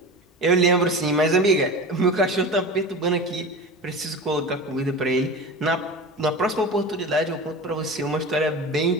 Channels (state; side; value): normal; both; correlation 0.31